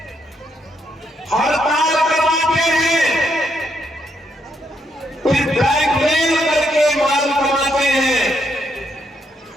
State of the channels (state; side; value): normal; both; correlation 0.76